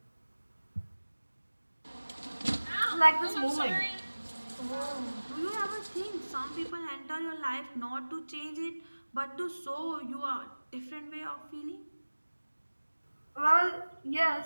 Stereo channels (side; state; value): both; inverted; correlation -1.00